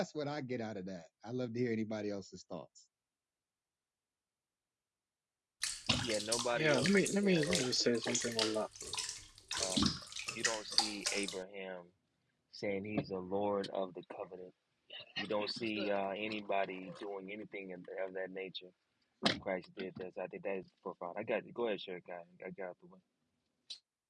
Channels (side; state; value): both; identical; correlation 1.00